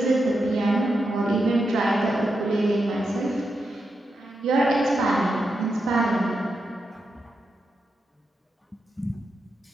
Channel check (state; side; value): normal; both; correlation 0.86